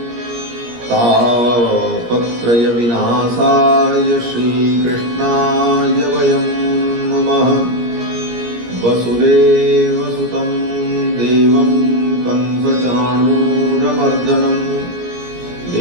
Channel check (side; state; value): left; late; 17 ms